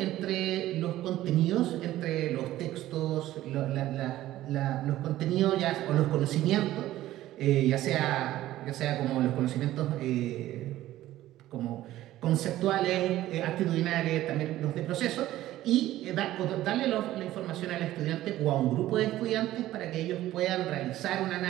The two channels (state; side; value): quieter; left; 14.7 dB